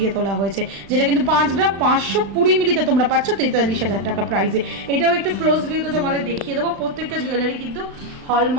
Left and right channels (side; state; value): left; late; 36 ms